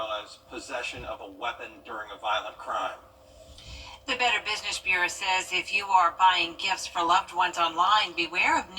as possession of a weapon during a violent crime. The Better Business Bureau says if you are buying gifts for loved ones online, beware of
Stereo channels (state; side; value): identical; both; correlation 1.00